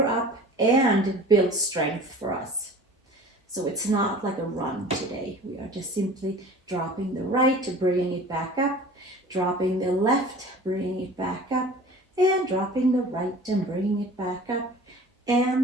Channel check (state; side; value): normal; both; correlation 0.42